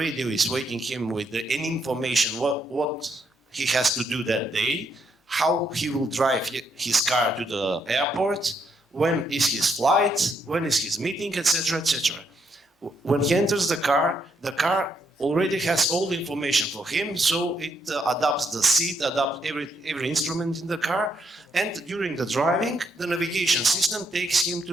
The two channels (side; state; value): both; normal; correlation 0.75